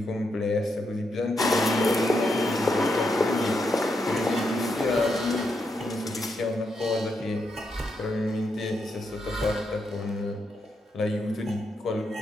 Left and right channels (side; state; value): both; normal; correlation 0.82